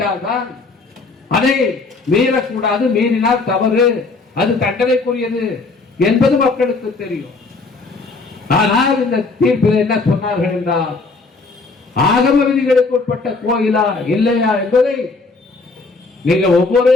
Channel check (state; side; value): quieter; right; 3.9 dB